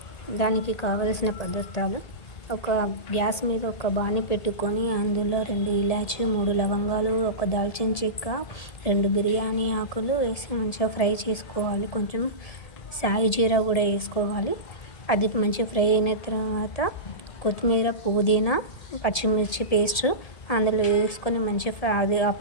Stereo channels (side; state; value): right; late; 1.7 ms